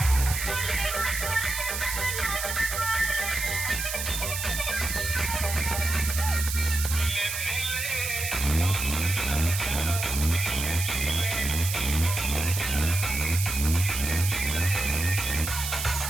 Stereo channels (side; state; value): right; noise; hiss, 4 dB below the sound